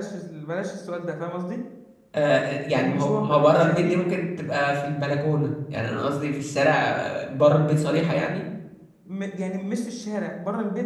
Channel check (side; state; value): both; identical; correlation 1.00